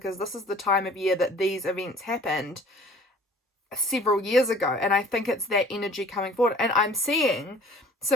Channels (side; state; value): both; normal; correlation 0.50